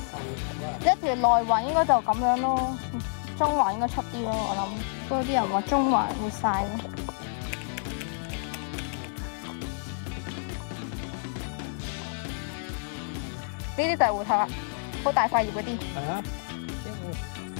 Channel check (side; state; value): right; silent; digital silence